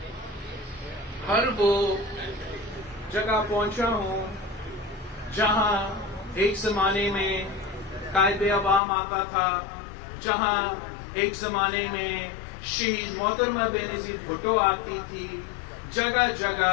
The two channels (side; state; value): right; drops out; at 8.8 s